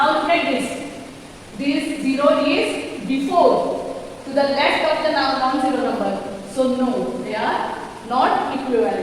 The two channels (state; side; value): identical; both; correlation 1.00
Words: look at this. This 0 is before, to the left of the non-zero number. So no, they are not